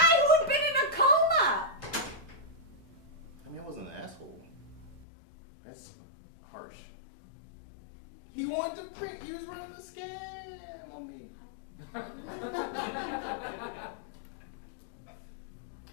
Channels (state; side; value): drops out; right; at 5.1 s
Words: who had been in a coma! I mean, I wasn't an asshole. That's harsh. He wanted to print. He was running the scam on me.